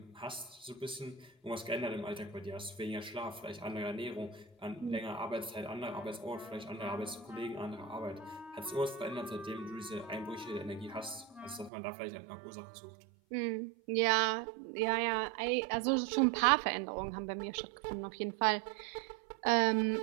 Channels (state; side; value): drops out; left; at 11.7 s